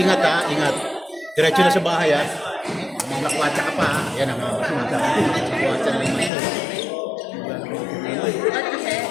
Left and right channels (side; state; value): right; drops out; at 6.3 s